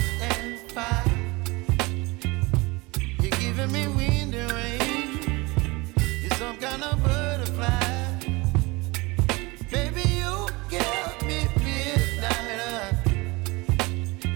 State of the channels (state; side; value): quieter; left; 24.3 dB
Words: and fire. You're giving me wind and rain. You're some kind of butterfly. Baby, you give me midnight.